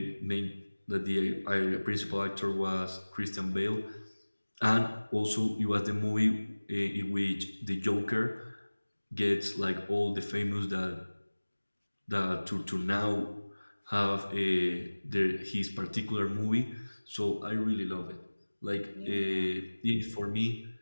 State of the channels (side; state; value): both; inverted; correlation -1.00